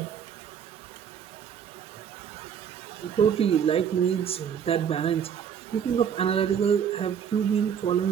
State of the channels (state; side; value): quieter; left; 8.1 dB